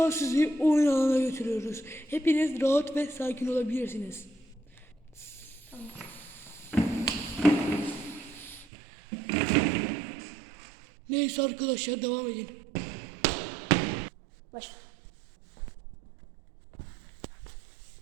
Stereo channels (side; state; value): left; drops out; at 8.7 s